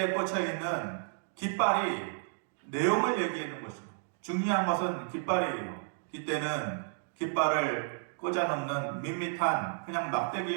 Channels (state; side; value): silent; left; digital silence